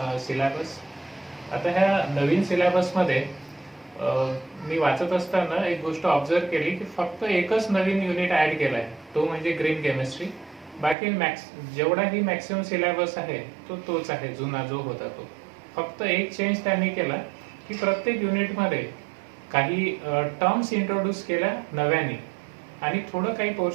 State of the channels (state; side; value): drops out; left; at 11.0 s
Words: सिलेबस. आता ह्या नवीन सिलेबसमध्ये मी वाचत असताना एक गोष्ट ऑब्झर्व केली की फक्त एकच नवीन युनिट ऍड केलाय, तो म्हणजे ग्रीन केमिस्ट्री. बाकी जेवढाही मॅक्सिमम सिलेबस आहे तो तोच आहे, जुना जो होता तो. फक्त एक चेंज त्यांनी केला की प्रत्येक युनिटमध्ये काही टर्म्स इंट्रोड्यूस केल्या नव्याने आणि थोडं काही